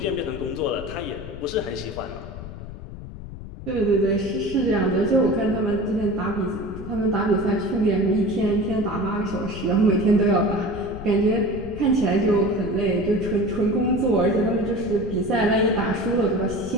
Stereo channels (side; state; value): left; noise; rumble, 12 dB below the sound